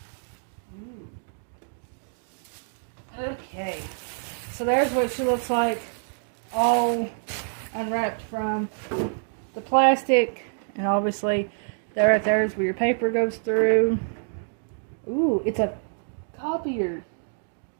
okay, so there's what she looks like, all unwrapped from the plastic, and obviously there right there is where your paper goes through. Ooh, it's a copier.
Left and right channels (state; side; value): silent; left; digital silence